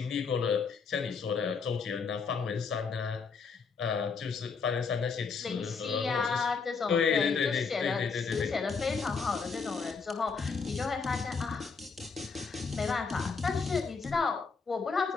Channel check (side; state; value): right; quieter; 5.2 dB